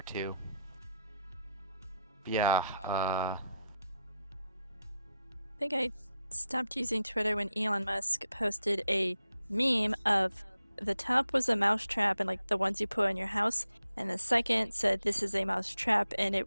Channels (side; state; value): both; inverted; correlation -0.84